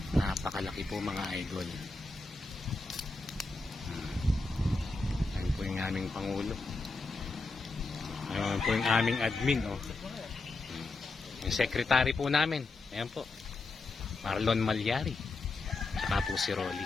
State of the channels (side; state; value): right; quieter; 3.4 dB